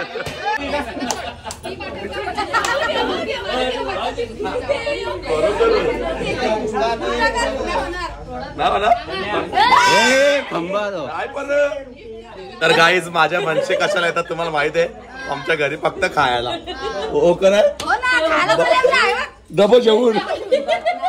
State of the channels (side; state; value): both; identical; correlation 1.00